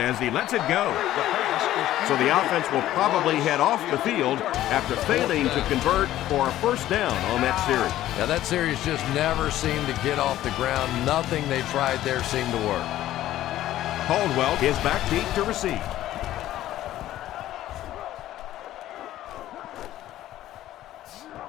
as he lets it go. So the offense will probably head off the field after failing to convert for a first down on that series. Yeah, that series just never seemed to get off the ground. Nothing they tried there seemed to work. Caldwell is back deep to receive.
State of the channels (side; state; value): right; quieter; 13.7 dB